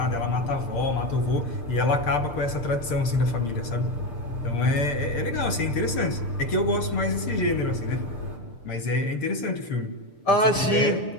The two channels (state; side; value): late; right; 6.7 ms